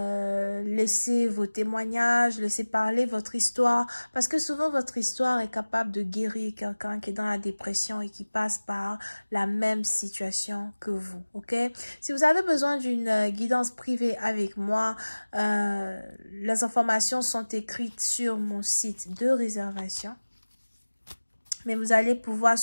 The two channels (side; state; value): both; inverted; correlation -1.00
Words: vos témoignages, laissez parler votre histoire. Parce que souvent, votre histoire est capable de guérir quelqu'un qui est dans la dépression et qui passe par la même situation que vous, ok? Si vous avez besoin d'une guidance privée avec moi, les informations sont écrites sur mon site de réservation. Mais vous allez pouvoir